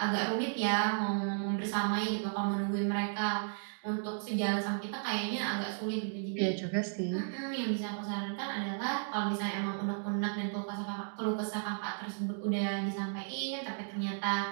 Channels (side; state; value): left; silent; digital silence